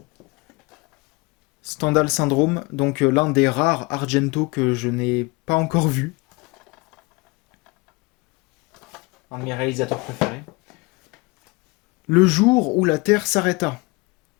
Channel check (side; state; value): right; quieter; 26.0 dB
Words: Stendhal Syndrome, donc l'un des rares Argento que je n'ai pas encore vu. Un de mes réalisateurs préférés. Le jour où la Terre s'arrêta.